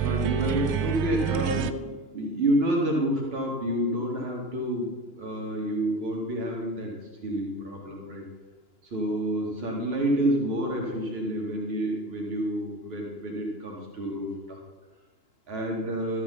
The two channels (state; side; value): late; left; 2.9 ms